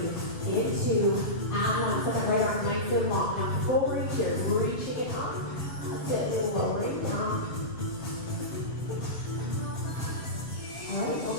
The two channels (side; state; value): right; late; 6.8 ms